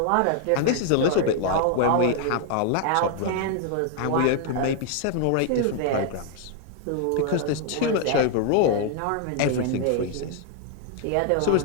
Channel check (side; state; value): both; different; correlation 0.00